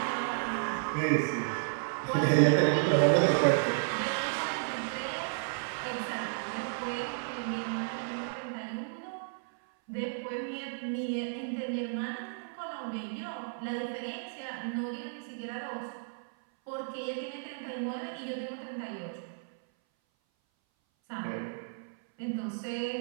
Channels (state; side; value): silent; left; 56 dB below the other